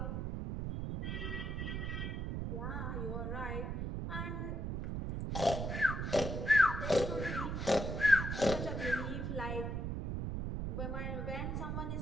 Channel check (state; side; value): noise; right; rumble, 2 dB below the sound